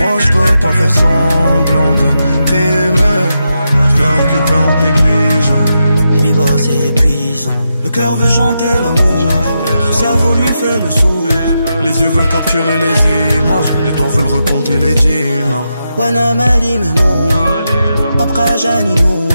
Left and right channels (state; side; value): inverted; both; correlation -0.86